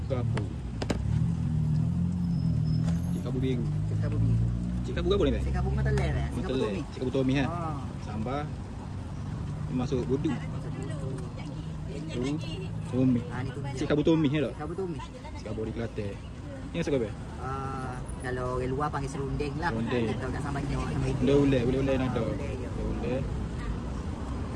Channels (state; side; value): identical; both; correlation 1.00